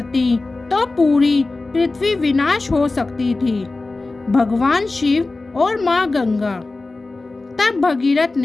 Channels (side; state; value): right; quieter; 3.4 dB